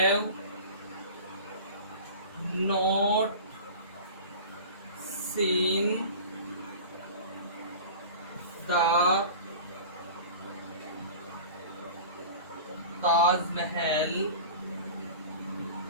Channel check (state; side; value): inverted; both; correlation -0.37